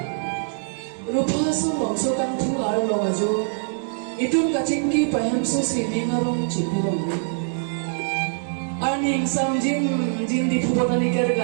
rupa so bangso kan thu ar lo ajo itum kaching ki paham so si ningarong chipurong arning samjin jin di phubotani kar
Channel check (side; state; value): left; silent; digital silence